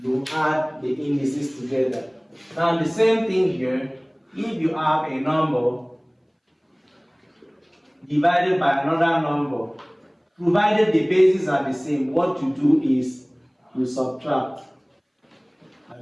add the indices together. Now the same thing here, if you have a number divided by another number, provided the bases are the same, what you do is you subtract.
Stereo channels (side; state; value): both; identical; correlation 1.00